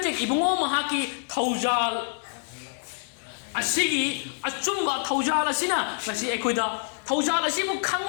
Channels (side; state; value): right; silent; digital silence